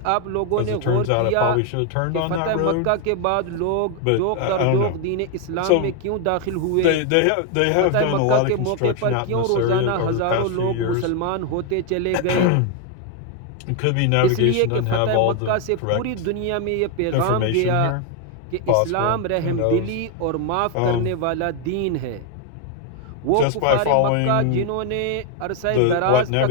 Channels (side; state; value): both; different; correlation 0.01